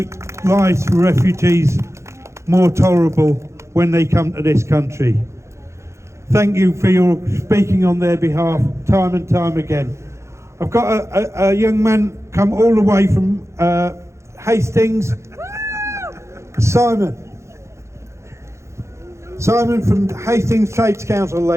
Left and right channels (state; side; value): late; left; 0.14 ms